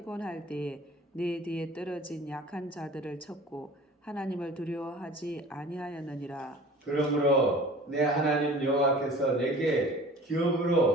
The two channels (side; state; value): both; normal; correlation 0.44